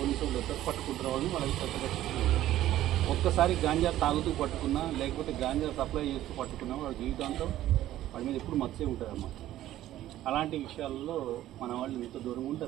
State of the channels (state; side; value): quieter; left; 13.7 dB